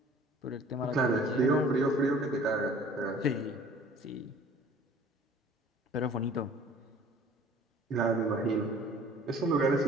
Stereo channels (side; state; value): both; normal; correlation 0.50